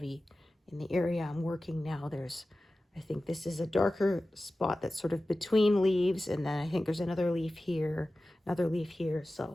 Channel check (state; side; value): normal; both; correlation 0.95